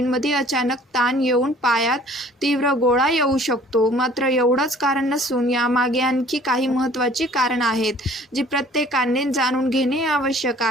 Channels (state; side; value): normal; both; correlation 0.53